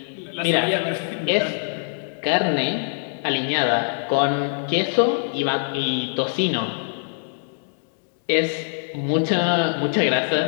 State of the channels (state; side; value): silent; right; digital silence